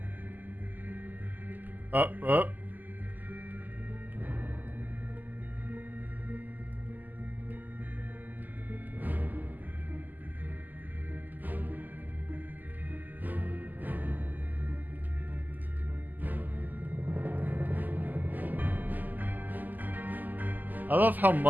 Up, up. I love how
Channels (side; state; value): left; late; 0.084 ms